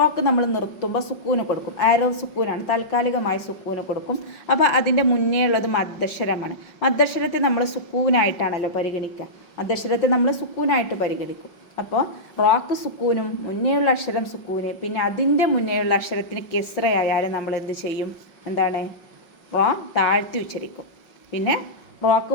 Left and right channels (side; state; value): right; late; 5.5 ms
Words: നമ്മൾ നിർത്തുമ്പോൾ സുക്കൂന് കൊടുക്കും, ആരോ സുക്കൂനാണ്, താൽക്കാലികമായി സുക്കൂന് കൊടുക്കും. അപ്പോൾ അതിൻ്റെ മുന്നേ ഉള്ളത് മദ്ദക്ഷരമാണ്. മദ്ദക്ഷരത്തെ നമ്മൾ സുക്കൂനായിട്ടാണല്ലോ പരിഗണിക്കുക, മദ്ദക്ഷരത്തെ നമ്മൾ സുക്കൂനായിട്ട് പരിഗണിക്കും. അപ്പോൾ റോക്ക് സുക്കൂനും മുന്നേയുള്ള അക്ഷരം സുക്കൂന്, പിന്നെ അതിൻ്റെ മുന്നേയുള്ള അക്ഷരത്തിന് കെസ്രയായാലും നമ്മൾ എന്ത് ചെയ്യും, എന്താണ്, റോ താഴ്ത്തി ഉച്ചരിക്കും. പിന്നെ റോക്ക്